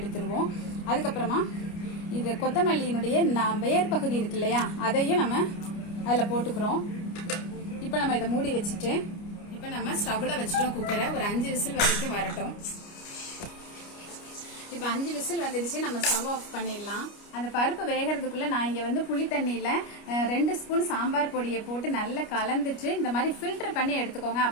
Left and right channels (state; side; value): late; right; 29 ms